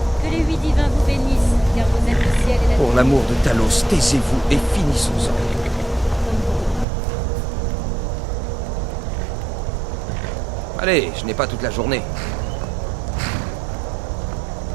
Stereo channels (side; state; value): left; drops out; at 6.9 s